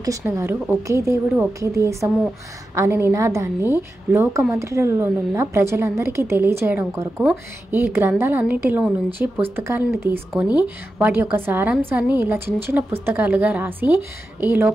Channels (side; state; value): both; normal; correlation 0.91